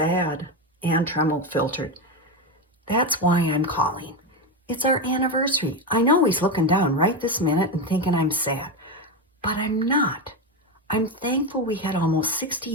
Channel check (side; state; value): both; normal; correlation 0.14